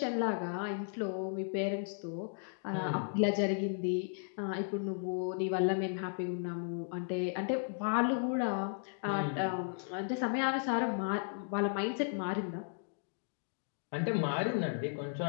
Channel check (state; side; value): silent; right; digital silence